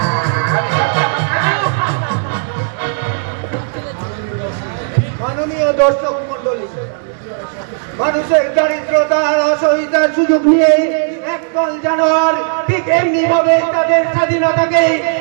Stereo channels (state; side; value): silent; left; digital silence